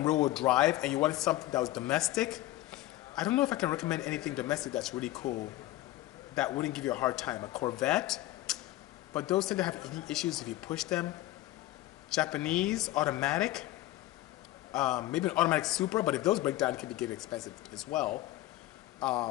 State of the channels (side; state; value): right; quieter; 16.1 dB